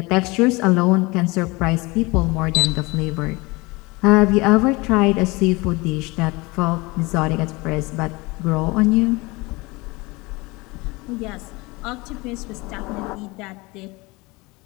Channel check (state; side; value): quieter; right; 24.2 dB